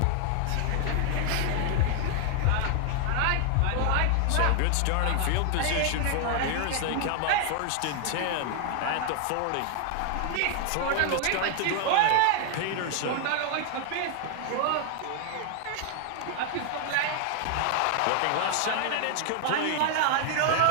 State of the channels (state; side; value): different; both; correlation 0.00